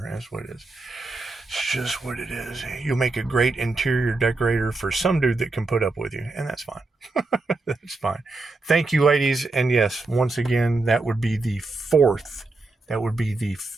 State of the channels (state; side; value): quieter; left; 3.4 dB